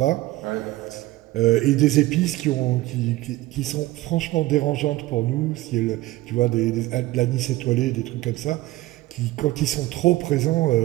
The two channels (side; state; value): left; quieter; 17.6 dB